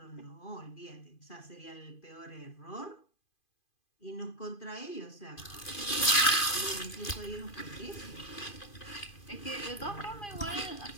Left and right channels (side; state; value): right; late; 2.5 ms